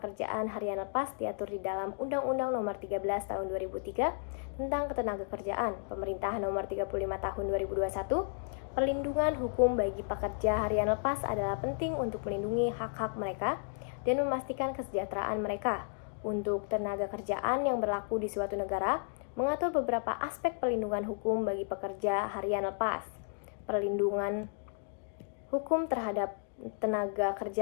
harian lepas diatur di dalam Undang-Undang Nomor 13 Tahun 2003 tentang Ketenagakerjaan, Pemerintah Nomor 35 Tahun 2021. Perlindungan hukum bagi pekerja harian lepas adalah penting untuk melindungi hak-hak mereka dan memastikan kesejahteraan mereka. Untuk tenaga kerjaan yang berlaku di suatu negara, mengatur beberapa aspek perlindungan hukum bagi pekerja harian lepas. Perlindungan hukum terhadap tenaga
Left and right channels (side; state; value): right; silent; digital silence